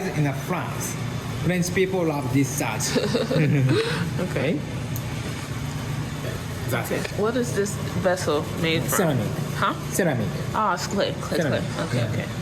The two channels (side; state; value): both; identical; correlation 1.00